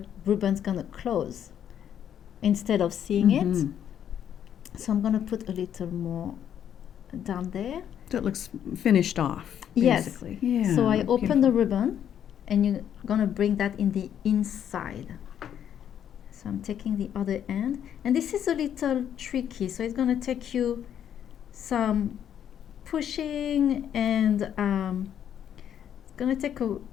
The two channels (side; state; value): right; quieter; 9.5 dB